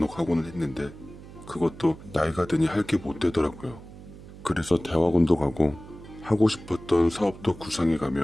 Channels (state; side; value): noise; right; hum, 17 dB below the sound